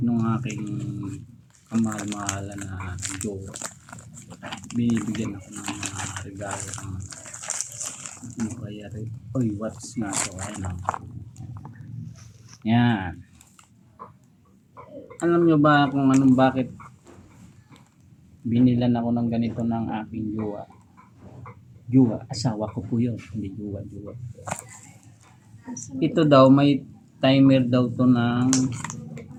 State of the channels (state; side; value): identical; both; correlation 1.00